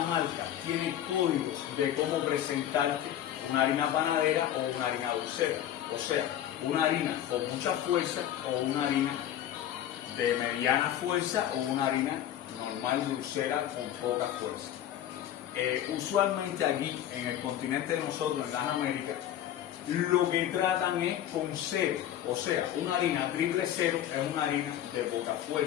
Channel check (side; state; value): right; quieter; 11.3 dB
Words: marca tiene códigos de cómo presentarte una harina panadera o una harina dulcera, o sea, una harina con mucha fuerza o una harina de mediana fuerza o una harina normal dulcera con poca fuerza. Usualmente aquí en el continente de nosotros, en las Américas, lo que tratan es con cero, o sea, una harina triple cero es una harina de poca